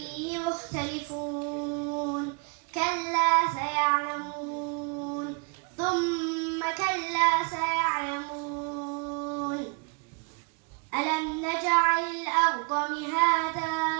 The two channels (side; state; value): left; quieter; 33.0 dB